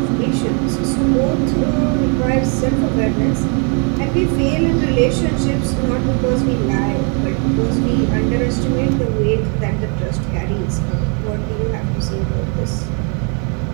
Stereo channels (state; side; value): quieter; left; 37.7 dB